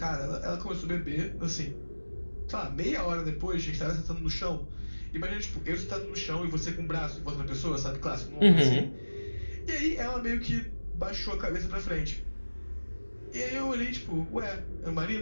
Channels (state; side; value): inverted; both; correlation -1.00